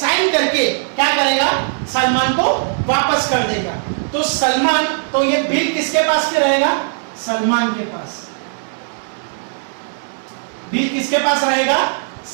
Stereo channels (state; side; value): silent; left; digital silence